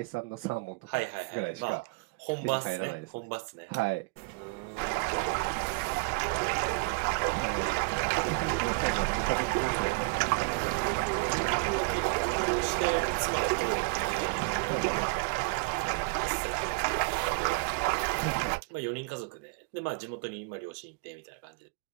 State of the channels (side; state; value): left; quieter; 29.8 dB